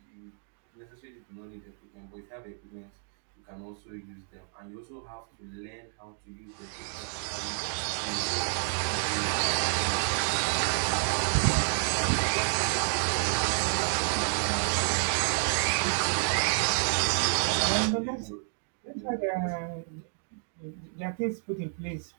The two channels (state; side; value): silent; left; digital silence